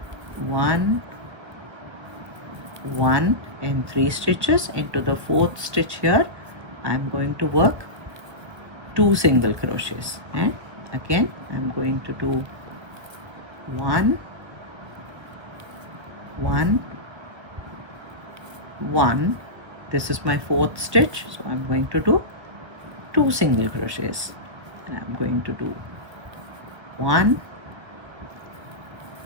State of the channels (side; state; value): left; late; 1.4 ms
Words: 1, 1 in 3 stitches. Into the fourth stitch here I'm going to work 2 single crochets, and again I'm going to do 1, 1, 1. This is my fourth stitch, so I'm going to do 2 single crochets, and I'm going to do 1,